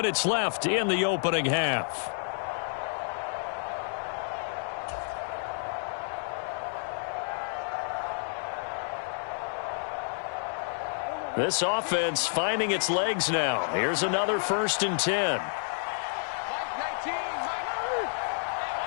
left in the opening half. This offense finding its legs now. Here's another 1st and 10.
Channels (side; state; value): right; silent; digital silence